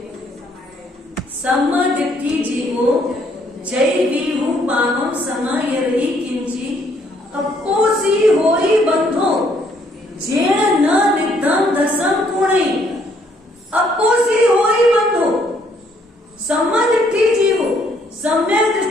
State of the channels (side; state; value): both; normal; correlation 0.67